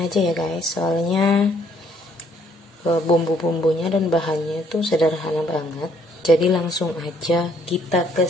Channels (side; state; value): both; normal; correlation 0.65